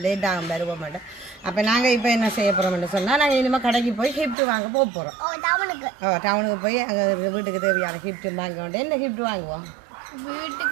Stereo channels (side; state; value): left; drops out; at 4.4 s